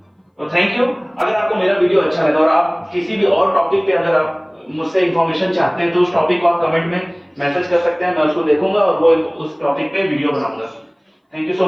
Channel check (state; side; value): identical; both; correlation 1.00